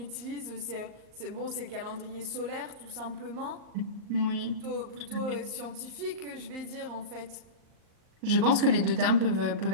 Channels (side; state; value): left; late; 38 ms